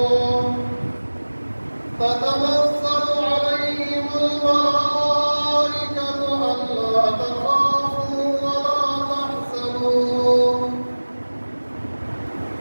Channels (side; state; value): both; inverted; correlation -1.00